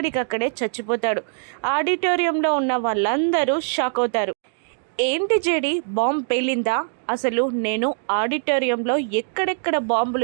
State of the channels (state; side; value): silent; left; digital silence